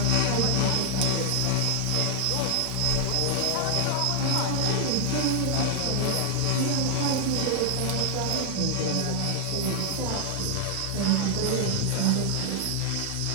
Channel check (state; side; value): different; both; correlation 0.00